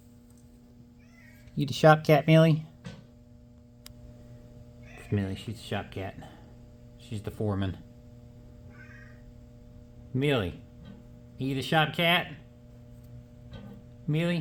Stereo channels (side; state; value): both; identical; correlation 1.00